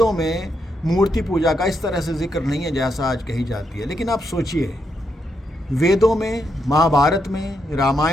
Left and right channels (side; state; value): both; normal; correlation 0.80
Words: में मूर्ति पूजा का इस तरह से जिक्र नहीं है जैसा आज कही जाती है। लेकिन आप सोचिए, वेदों में, महाभारत में,